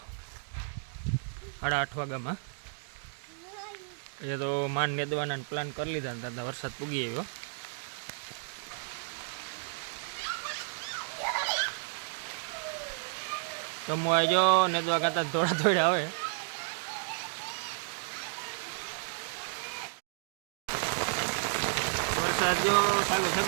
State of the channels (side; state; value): left; silent; digital silence